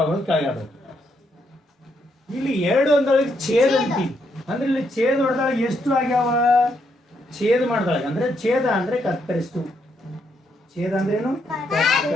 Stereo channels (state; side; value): normal; both; correlation 0.77